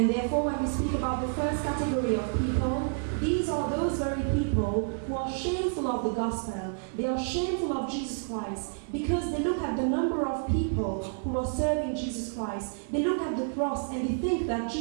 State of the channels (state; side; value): silent; left; digital silence